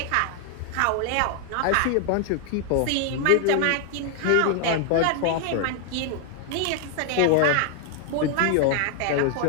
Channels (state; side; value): different; both; correlation 0.00